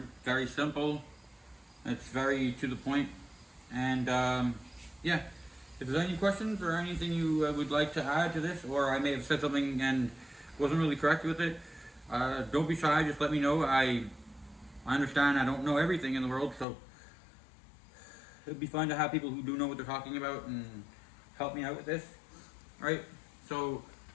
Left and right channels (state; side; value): drops out; right; at 16.7 s